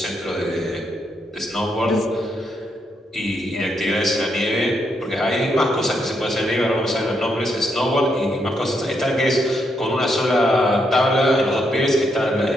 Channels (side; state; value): both; normal; correlation 0.78